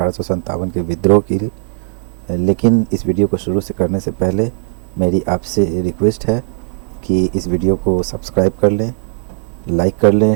के विद्रोह की। लेकिन इस वीडियो को शुरू से करने से पहले मेरी आपसे रिक्वेस्ट है कि इस वीडियो को सब्सक्राइब कर लें, लाइक कर लें,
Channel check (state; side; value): silent; left; digital silence